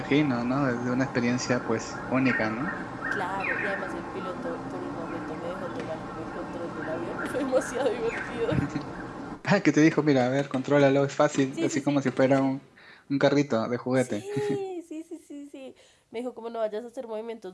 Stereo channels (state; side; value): identical; both; correlation 1.00